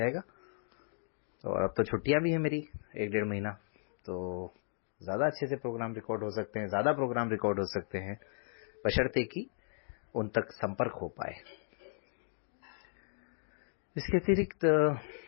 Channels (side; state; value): right; silent; digital silence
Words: और अब तो छुट्टियां भी है मेरी 1-1.5 महीना, तो ज्यादा अच्छे से प्रोग्राम रिकॉर्ड हो सकते हैं, ज्यादा प्रोग्राम रिकॉर्ड हो सकते हैं, बशर्ते कि उन तक संपर्क हो पाए। इसके अतिरिक्त